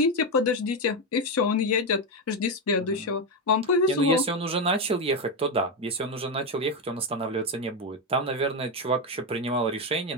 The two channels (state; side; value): normal; both; correlation 0.09